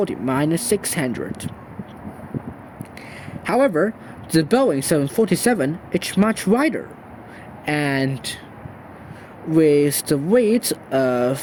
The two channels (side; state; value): both; identical; correlation 1.00